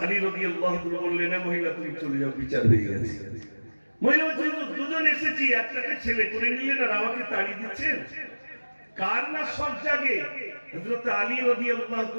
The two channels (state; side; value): inverted; both; correlation -1.00